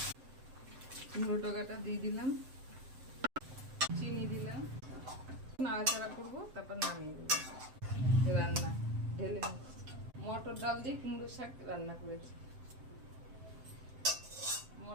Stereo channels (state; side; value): late; left; 7.7 ms